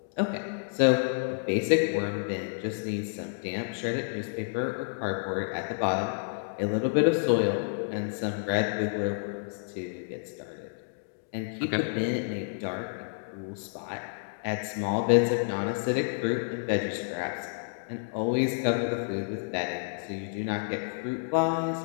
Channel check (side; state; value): right; silent; digital silence